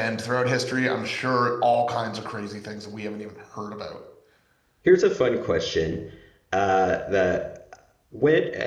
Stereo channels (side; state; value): both; identical; correlation 1.00